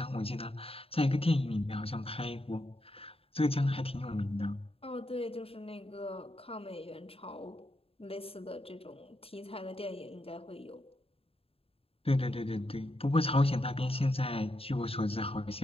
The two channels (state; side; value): late; right; 0.28 ms